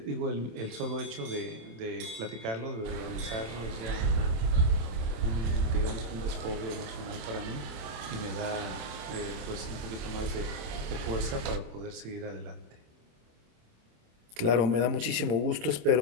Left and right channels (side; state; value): left; late; 27 ms